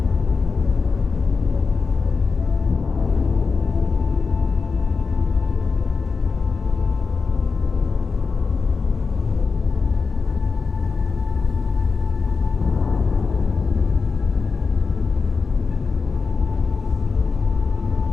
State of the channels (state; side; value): quieter; right; 4.8 dB